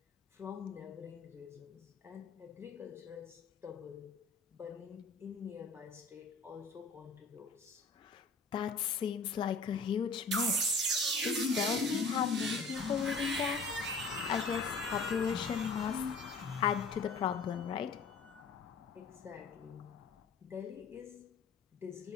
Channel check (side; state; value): right; quieter; 3.9 dB